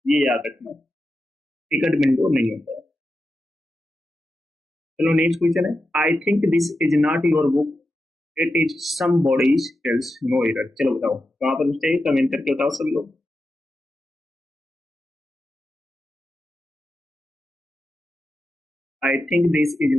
ये याद रखना, टिकट विंडो नहीं होता है। चलो नेक्स्ट क्वेश्चन है, I think this is not your book, it is somebody's else, no error. चलो बताओ कहां पर मिस्टेक है, कमेंट करके बताओ सभी लोग। I think this is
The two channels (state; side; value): normal; both; correlation 0.89